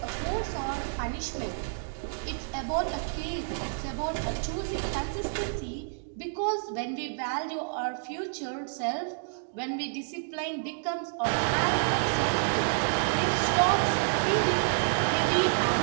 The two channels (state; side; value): silent; left; digital silence